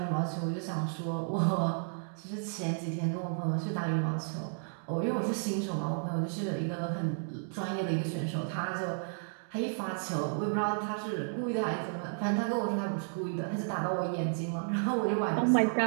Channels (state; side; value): silent; left; digital silence